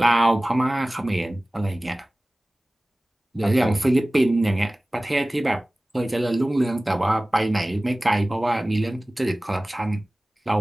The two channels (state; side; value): normal; both; correlation 0.98